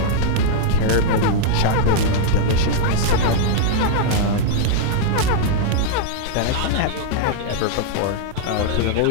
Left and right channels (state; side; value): different; both; correlation -0.01